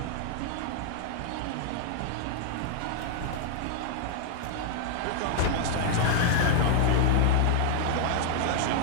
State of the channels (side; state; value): both; different; correlation 0.00